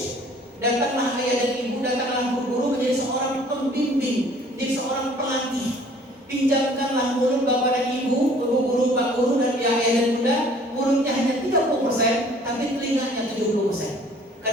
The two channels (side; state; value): both; normal; correlation 0.54